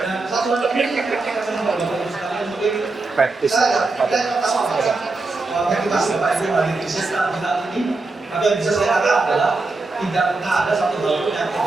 satu lagi kita akan Bapak Ibu sekalian mungkin saya pertama motivasi Bapak Ibu dari Kristen saat ini. Tapi yang bisa saya katakan adalah tidak pernah ada satu hal pun yang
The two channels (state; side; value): quieter; left; 3.5 dB